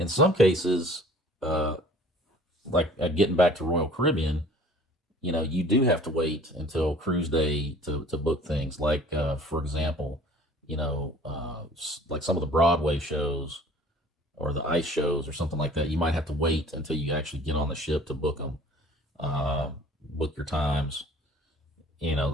some cases, uh, like, getting back to Royal Caribbean, you do have to wait until cruise day to book things. Like, for example, like some of the Broadway shows or the ice shows or something like that. You might have to wait until you actually get on the ship to book them, book your times.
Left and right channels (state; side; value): normal; both; correlation 0.50